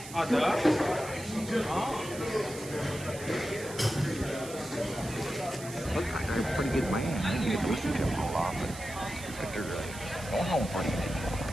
Looks like they're a pretty good man. I didn't get to listen to him a whole lot, but they're going home pretty good.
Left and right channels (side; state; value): right; noise; hiss, 13 dB below the sound